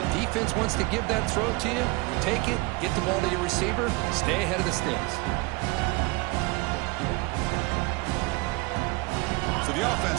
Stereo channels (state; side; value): quieter; left; 24.6 dB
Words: defense wants to give that throw to you. You take it, get the ball to your receiver, stay ahead of the sticks. So the